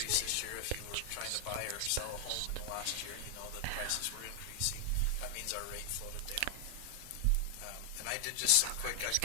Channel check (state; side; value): different; both; correlation 0.00